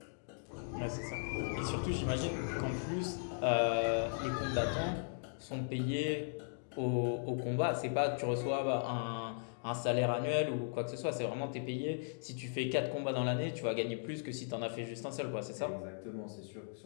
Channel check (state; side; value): silent; right; digital silence